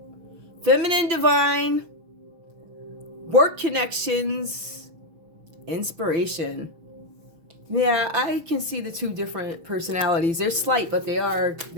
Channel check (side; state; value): left; late; 6.2 ms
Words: Feminine, divine, work connections, inspiration. Yeah, I can see the two different personalities. They're slight, but they're